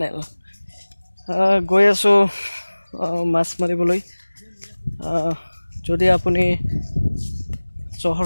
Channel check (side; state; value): both; inverted; correlation -1.00